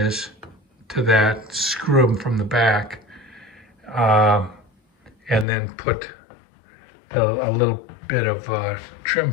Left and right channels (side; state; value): right; drops out; at 5.5 s